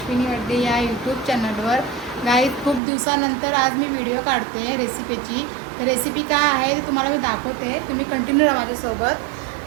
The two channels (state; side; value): drops out; left; at 2.8 s